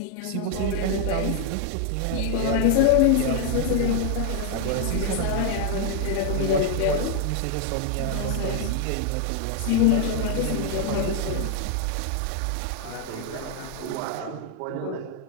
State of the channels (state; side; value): different; both; correlation 0.00